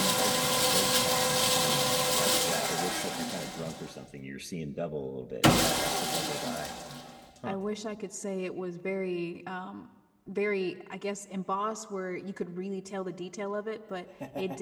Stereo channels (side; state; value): both; identical; correlation 1.00